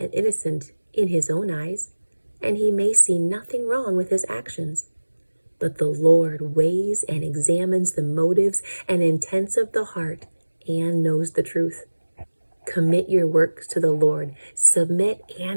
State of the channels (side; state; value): both; inverted; correlation -1.00